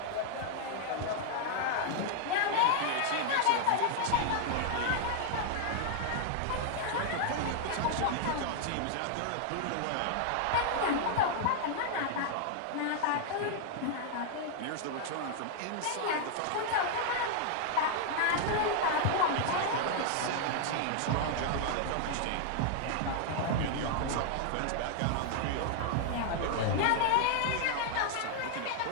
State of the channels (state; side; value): different; both; correlation 0.00